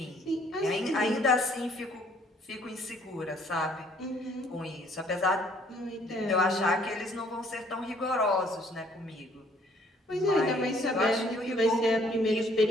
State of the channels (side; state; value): both; normal; correlation 0.62